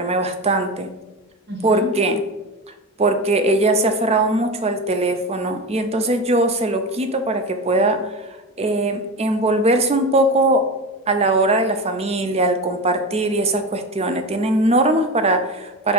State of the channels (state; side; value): normal; both; correlation 0.24